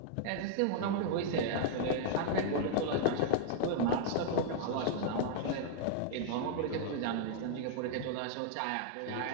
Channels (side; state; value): both; different; correlation 0.00